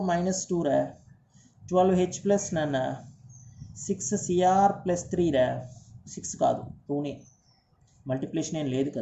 -2 రా, 12H+ నాన్న. 6Cr +3 రా, 6 కాదు 2నే, మల్టిప్లికేషన్ ఏం లేదు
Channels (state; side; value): identical; both; correlation 1.00